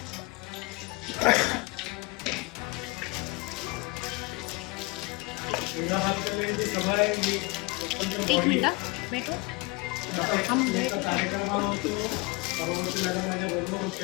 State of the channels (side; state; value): right; quieter; 25.5 dB